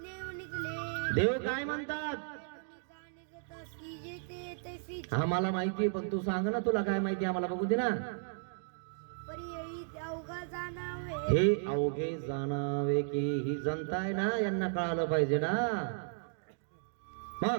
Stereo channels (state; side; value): silent; left; digital silence